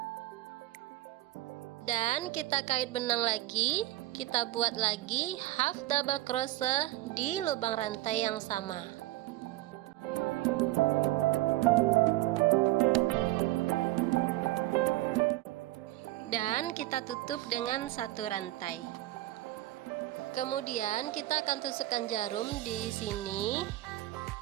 Dan kita kait benang lagi. Kita buat lagi half double crochet di lubang rantai yang sama. Dan kita tutup dengan satu rantai. Kemudian kita akan tusukkan jarum di sini.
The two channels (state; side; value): quieter; left; 17.0 dB